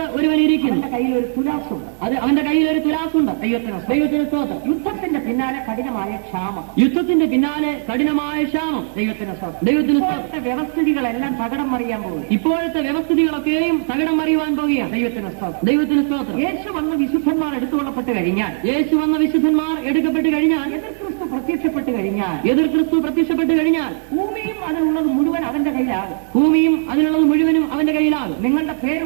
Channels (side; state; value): left; silent; digital silence